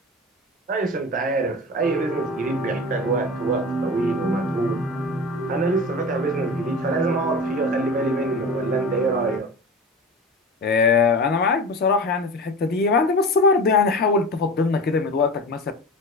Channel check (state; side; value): normal; both; correlation 0.32